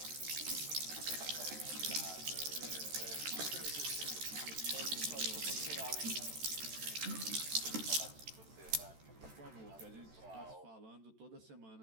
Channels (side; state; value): left; late; 13 ms